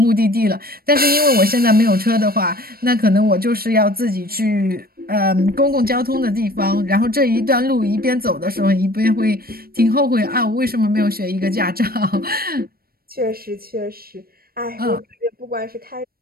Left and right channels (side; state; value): left; late; 0.44 ms